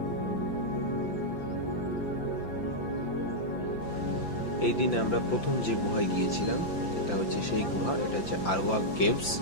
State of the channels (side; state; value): right; late; 5.9 ms